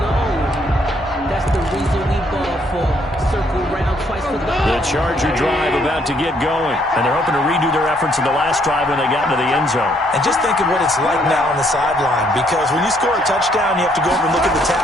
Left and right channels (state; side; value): normal; both; correlation 0.68